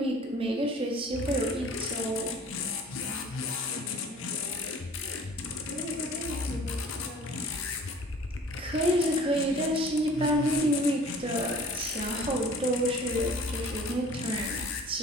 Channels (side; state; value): both; normal; correlation 0.48